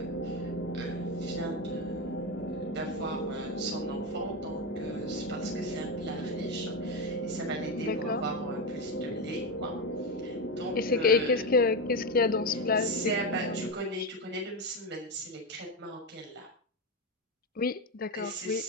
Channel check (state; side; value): normal; both; correlation 0.12